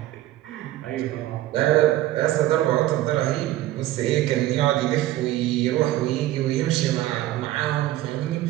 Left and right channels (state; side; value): quieter; left; 15.0 dB